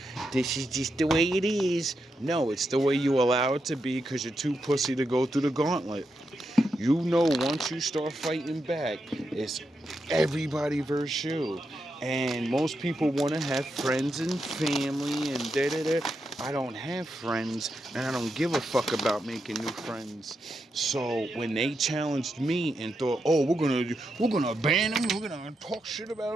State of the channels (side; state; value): both; normal; correlation 0.85